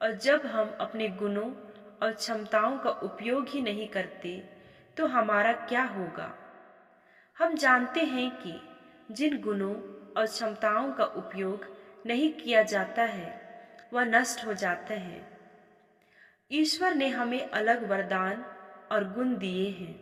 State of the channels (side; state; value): both; identical; correlation 1.00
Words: और जब हम अपने गुणों और क्षमताओं का उपयोग ही नहीं करते तो हमारा क्या होगा। हम जानते हैं कि जिन गुणों और क्षमताओं का उपयोग नहीं किया जाता है वह नष्ट हो जाते हैं। ईश्वर ने हमें अलग वरदान और गुण दिए हैं।